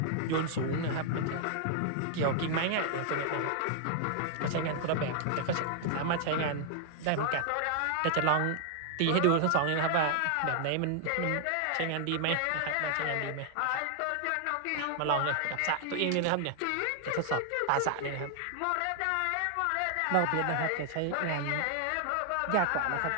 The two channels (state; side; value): different; both; correlation 0.00